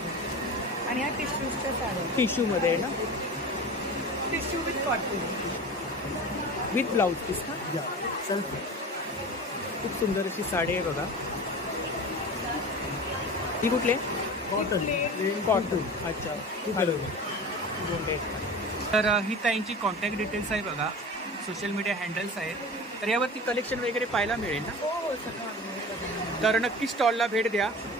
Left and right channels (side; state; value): both; normal; correlation 0.34